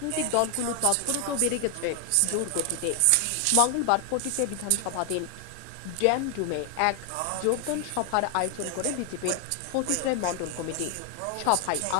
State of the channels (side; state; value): both; different; correlation 0.00